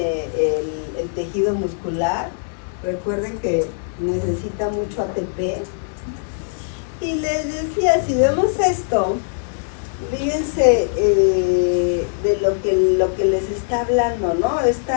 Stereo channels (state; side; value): silent; right; digital silence